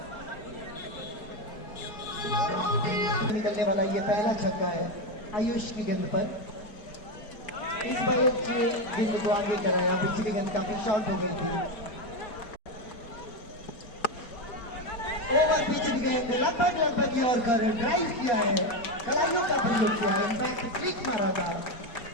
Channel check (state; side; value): late; right; 4.6 ms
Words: निकलने वाला। ये पहला छक्का है आयुष की गेंद पर। इस बार गेंद को आगे कराया, पिछली गेंद काफी शॉर्ट हो गई थी। ओवर पिछली गेंद लगभग और ड्राइव किया है, कलाइयों का प्रयोग किया है, इनफैक्ट फ्लिक मारा था।